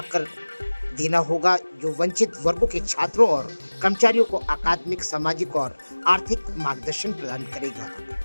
देना होगा, जो वंचित वर्गों के छात्रों और कर्मचारियों को अकादमिक, सामाजिक और आर्थिक मार्गदर्शन प्रदान करेगा।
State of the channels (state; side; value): inverted; both; correlation -1.00